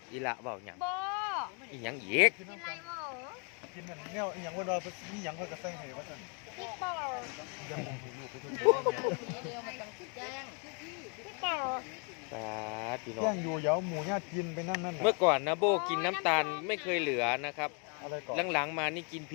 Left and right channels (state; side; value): quieter; right; 36.2 dB